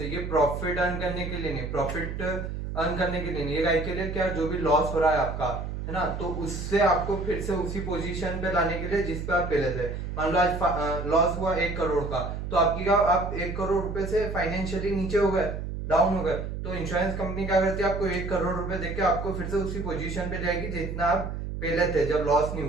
ये प्रॉफिट अर्न करने के लिए नहीं, प्रॉफिट अर्न करने के लिए नहीं, ये के लिए क्या, जो भी लॉस हो रहा है आपका, है ना, तो उससे आपको फिर से उसी पोजीशन पे लाने के लिए जिस पे आप पहले थे। मान लो आज लॉस हुआ 1 करोड़ का, तो आपकी क्या, आप 1 करोड़ रुपए से फाइनेंशियली नीचे हो गए, डाउन हो गए, तो इंश्योरेंस कंपनी क्या करती है, आपको 1 करोड़ रुपए देके आपको फिर से उसी पोजीशन पे जाएगी जितना आप पहले थे जब लॉस नहीं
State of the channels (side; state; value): right; noise; hum, 5 dB below the sound